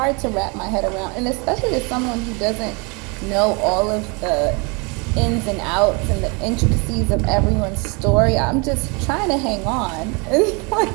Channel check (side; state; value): left; quieter; 31.1 dB